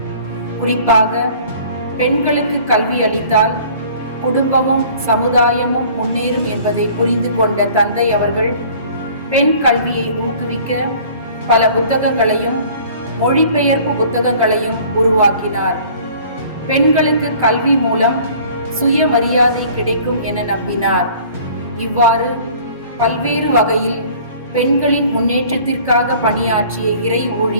குறிப்பாக பெண்களுக்கு கல்வி அளித்தால் குடும்பமும் சமுதாயமும் முன்னேறும் என்பதை புரிந்து கொண்ட தந்தை அவர்கள் பெண் கல்வியை ஊக்குவிக்க பல புத்தகங்களையும் மொழிபெயர்ப்பு புத்தகங்களையும் உருவாக்கினார். பெண்களுக்கு கல்வி மூலம் சுயமரியாதை கிடைக்கும் என நம்பினார். இவ்வாறு பல்வேறு வகையில் பெண்களின் முன்னேற்றத்திற்காக பணியாற்றிய இறை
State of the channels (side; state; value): both; inverted; correlation -0.50